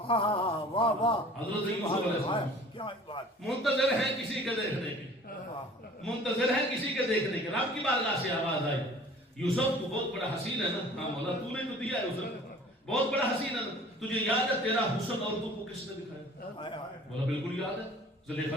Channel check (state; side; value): normal; both; correlation 0.48